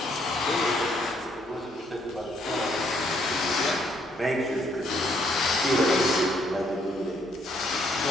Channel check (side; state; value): both; normal; correlation 0.69